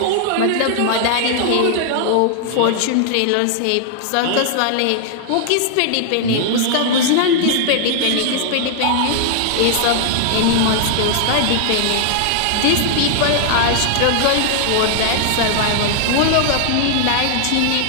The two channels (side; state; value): both; different; correlation -0.01